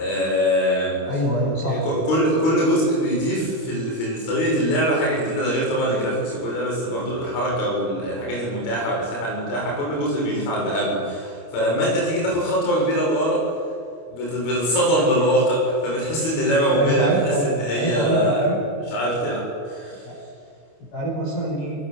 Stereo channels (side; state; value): right; late; 25 ms